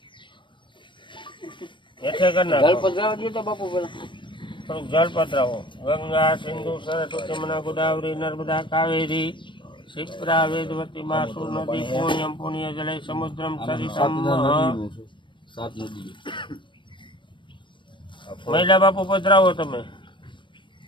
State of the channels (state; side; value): late; right; 0.23 ms